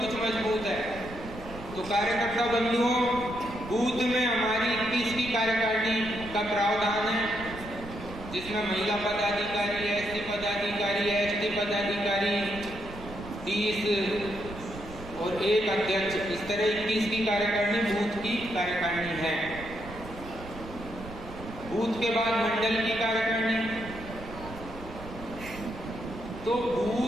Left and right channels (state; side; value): noise; right; rumble, 14 dB below the sound